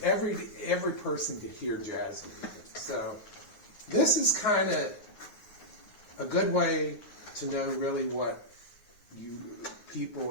person could hear jazz music. So this is kind of a good way to know really what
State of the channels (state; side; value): late; right; 9.5 ms